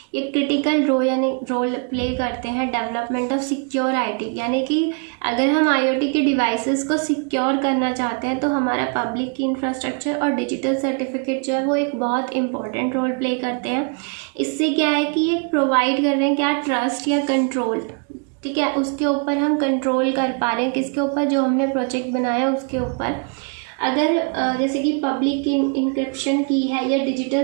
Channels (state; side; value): quieter; left; 37.7 dB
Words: ये क्रिटिकल रोल प्ले करते हैं डेवलपमेंट ऑफ सिक्योर आईटी. यानी कि अगर हम आईओटी के डिवाइसेस को सिक्योर करना चाहते हैं तो हमारा पब्लिक की इंफ्रास्ट्रक्चर और डिजिटल सर्टिफिकेट जो है वो एक बहुत इंपॉर्टेंट रोल प्ले करते हैं. इससे क्या है कि ये प्रोवाइड कर रहे हैं क्या, ट्रस्ट या कंट्रोल. ठीक है, उसके ऊपर हम कंट्रोल कर पा रहे हैं, किसके ऊपर, जो हमने प्रोजेक्ट बनाया उसके ऊपर. अगर जैसे कि पब्लिक इंक्रिप्शन की है या डिजिटल